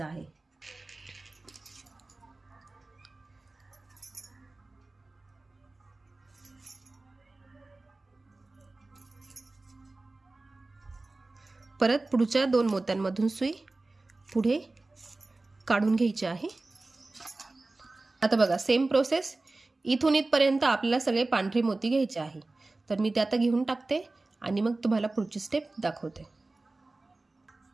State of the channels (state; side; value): quieter; left; 3.2 dB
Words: आहे. परत पुढच्या 2 मोत्यांमधून सुई पुढे काढून घ्यायची आहे. आता बघा सेम प्रोसेस, इथून इथपर्यंत आपल्याला सगळे पांढरे मोती घ्यायचे आहे. तर मी ते आता घेऊन टाकते आणि मग तुम्हाला पुढची स्टेप दाखवते.